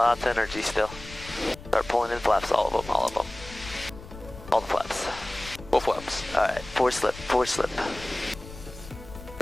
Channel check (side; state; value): left; noise; rumble, 15 dB below the sound